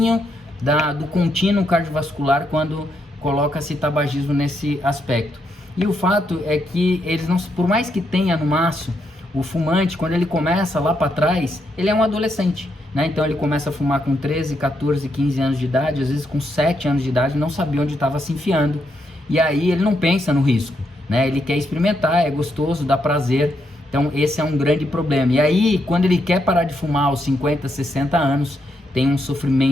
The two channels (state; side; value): normal; both; correlation 0.79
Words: do contínuo cardiovascular quando coloca-se tabagismo nesse aspecto. E o fato é que eles não, por mais que tenha no maço, o fumante, quando ele começa lá para trás, ele é um adolescente, né? Então ele começa a fumar com 13, 14, 15 anos de idade, às vezes com 7 anos de idade, não sabia onde estava se enfiando. E aí ele não pensa no risco, né? Ele quer experimentar, é gostoso, dá prazer. Então esse é um grande problema. E aí, quando ele quer parar de fumar aos 50, 60 anos, tem um